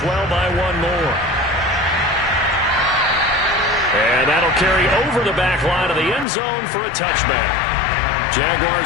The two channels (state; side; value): drops out; right; at 6.2 s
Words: by 1 more. And that'll carry over the back line of the end zone for a touchback.